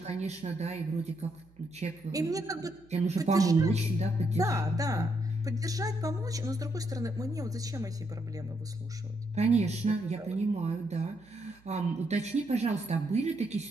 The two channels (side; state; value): right; noise; hum, 28 dB below the sound